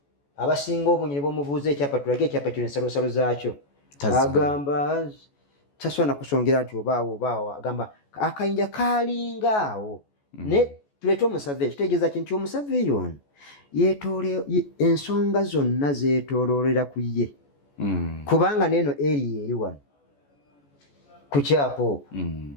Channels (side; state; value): right; late; 14 ms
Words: abasinga obunyi ne bamubuuza ekyapa tulage ekyapa kino ensalosalo zaakyo agamba tasobola kusongera nti obaawo agamba akayinja kalingaawo ne tuleete omusave kitegeeza kinti omusave ono ensonga zonna zeetooloolera ku ye kubanga neeno eri eri wano ku kyapa okwo